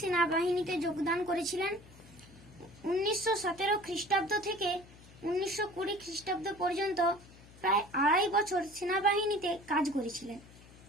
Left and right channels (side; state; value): left; noise; hum, 22 dB below the sound